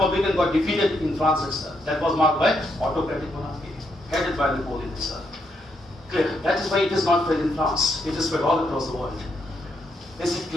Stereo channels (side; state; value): both; normal; correlation 0.78